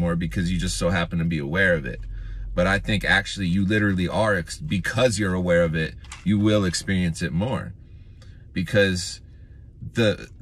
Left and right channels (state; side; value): identical; both; correlation 1.00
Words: because you just so happen to be aware of it. But I think actually you literally are, because you're aware of it, you will experience it more. Because the